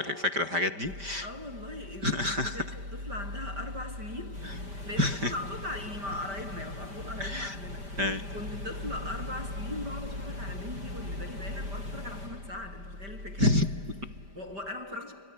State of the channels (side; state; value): left; late; 5.1 ms